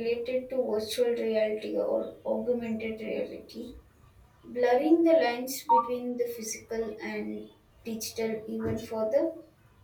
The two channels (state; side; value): identical; both; correlation 1.00